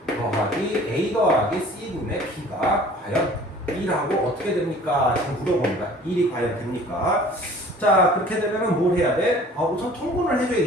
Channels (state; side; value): normal; both; correlation 0.49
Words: 더하기 a 더하기 c 분의 b가 과연 1하고 어떻게 됩니까? 지금 물어봅니다. 1이 과연 됩니까? 자, 그렇게 되면 뭘 해야 돼? 우선 통분을